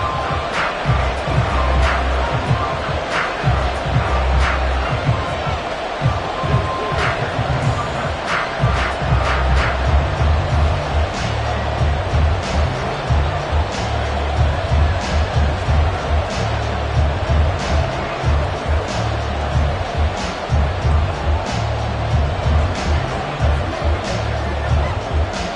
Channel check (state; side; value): identical; both; correlation 1.00